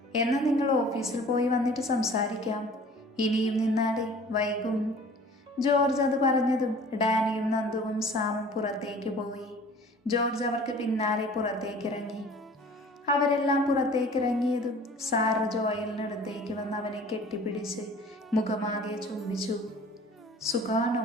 എന്നാൽ നിങ്ങൾ ഓഫീസിൽ പോയി വന്നിട്ട് സംസാരിക്കാം, ഇനിയും നിന്നാലേ വൈകും. ജോർജ് അത് പറഞ്ഞതും ഡാനിയും നന്ദുവും സാമും പുറത്തേക്ക് പോയി. ജോർജ് അവർക്ക് പിന്നാലെ പുറത്തേക്കിറങ്ങി. അവരെല്ലാം പുറത്തേക്കിറങ്ങിയതും സാറ ജോയലിനടുത്തേക്ക് വന്ന് അവനെ കെട്ടിപ്പിടിച്ച് മുഖമാകെ ചുംബിച്ചു. സുഖാണോ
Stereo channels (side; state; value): both; normal; correlation 0.47